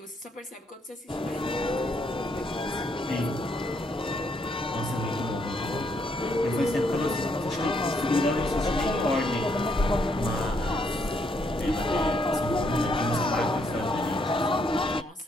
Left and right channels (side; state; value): both; normal; correlation 0.73